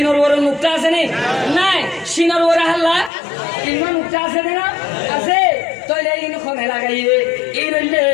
বড় নুক্তা আছে নে নাই সিনর বড় হাল্লা ইমান নুক্তা আছে না আছে তইলে ইন খনে লাগাইয়ে এই রইলে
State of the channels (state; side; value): drops out; right; at 3.1 s